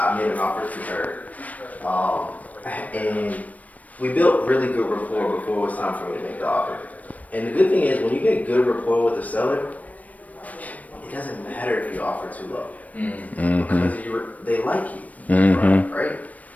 made an offer to her, and we built really good rapport before it was time for me to make the offer. And the good thing is, when you get good rapport with the seller, it doesn't matter if you offer too low because they like you, right?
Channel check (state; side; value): late; right; 0.071 ms